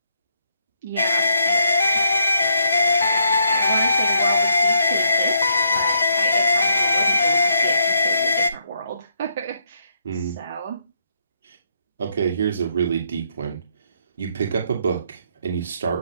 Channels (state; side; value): inverted; both; correlation -0.74